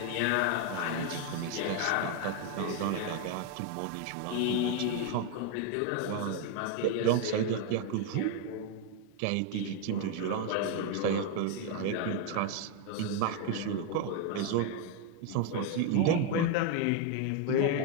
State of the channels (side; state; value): both; different; correlation 0.01